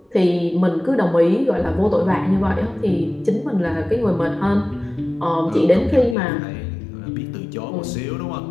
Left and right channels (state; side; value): drops out; right; at 6.2 s